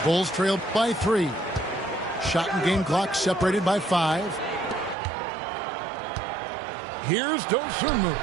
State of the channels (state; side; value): drops out; left; at 5.0 s